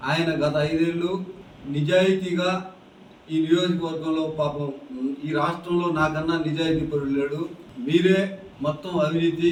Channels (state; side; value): identical; both; correlation 1.00